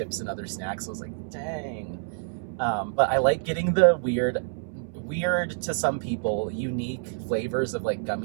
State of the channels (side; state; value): left; silent; 60 dB below the other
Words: and other snacks, I was like, dang. But I like getting the weird to some people, unique flavors of like